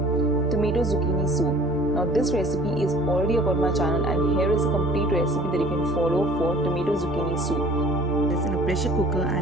tomato zucchini soup. Now this recipe is already up on my channel, and here is a complete recipe that you can follow for tomato zucchini soup. This in a pressure cooker,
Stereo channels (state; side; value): noise; right; hum, 23 dB below the sound